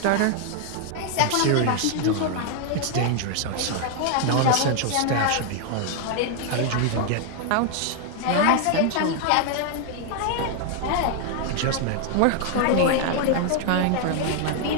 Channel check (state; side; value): different; both; correlation 0.00